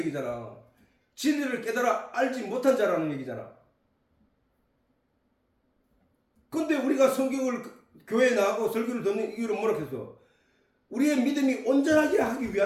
진리를 깨달아 알지 못한 자라는 얘기잖아. 근데 우리가 성경을 교회에 나가고 설교를 듣는 이유는 뭐라 했어? 우리의 믿음이 온전하게 하기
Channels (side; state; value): both; identical; correlation 1.00